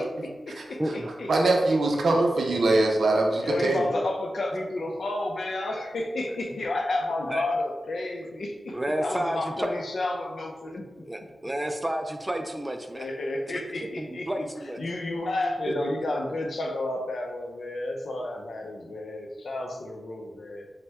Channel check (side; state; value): both; normal; correlation 0.91